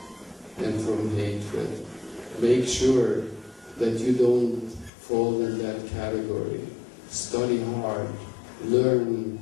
and from hatred. Make sure that you don't fall in that category. Study hard, learn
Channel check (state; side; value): drops out; right; at 4.9 s